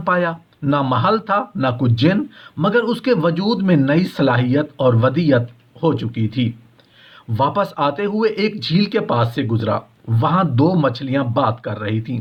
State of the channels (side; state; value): both; identical; correlation 1.00